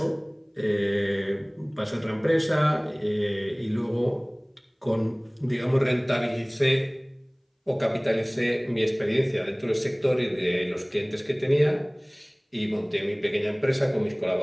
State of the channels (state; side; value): identical; both; correlation 1.00